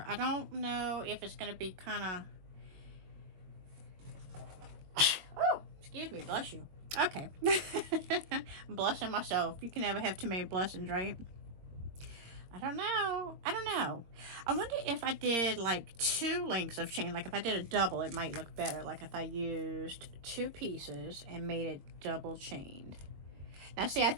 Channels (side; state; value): left; late; 22 ms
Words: I don't know if it's going to be kind of oh, excuse me, bless you. Okay. I'm blessing myself. You can never have too many blessings, right? I don't know. I don't know. I wonder if I did like 2 links of chain. Like if I did a double, it might look better. Like if I used 2 pieces and made it double chained. Now see, I